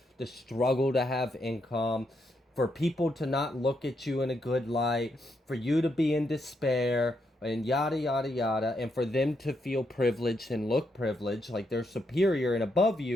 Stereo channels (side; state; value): both; normal; correlation 0.79